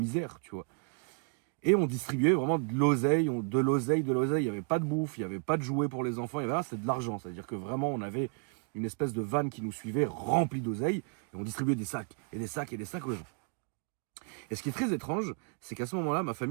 tu vois. Et on distribuait vraiment de l'oseille, il n'y avait pas de bouffe, il n'y avait pas de jouets pour les enfants, il y avait là, c'était de l'argent, c'est-à-dire que vraiment on avait une espèce de vanne qui nous suivait remplie d'oseille, et on distribuait des sacs, et des sacs, et des sacs aux gens. Et ce qui est très étrange, c'est qu'à ce moment-là, ma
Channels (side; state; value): left; quieter; 39.3 dB